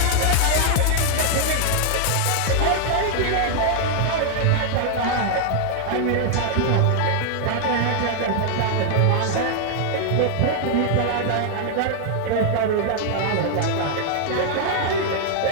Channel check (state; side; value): different; both; correlation 0.00